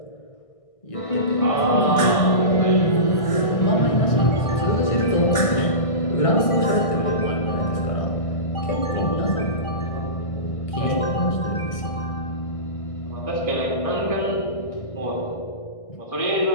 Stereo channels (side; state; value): right; late; 1.6 ms